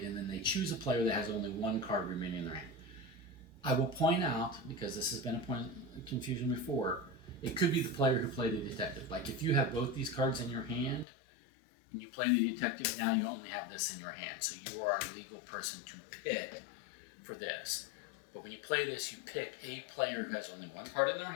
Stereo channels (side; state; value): right; drops out; at 11.1 s